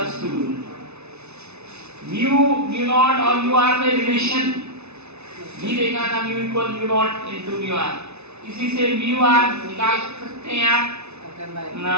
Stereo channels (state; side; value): late; left; 0.81 ms